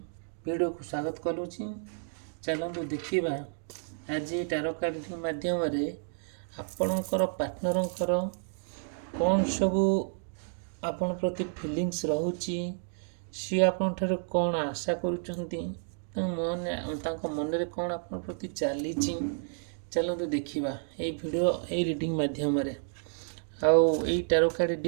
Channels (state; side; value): silent; left; digital silence